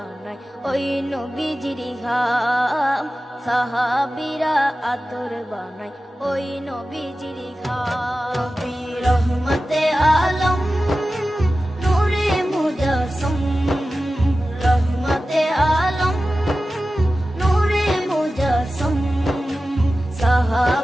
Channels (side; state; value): both; normal; correlation 0.94